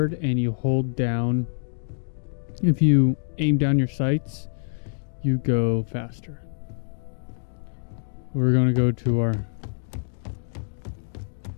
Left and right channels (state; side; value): silent; right; digital silence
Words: and you hold down, if you aim down your sights, you go faster. We're gonna go to our.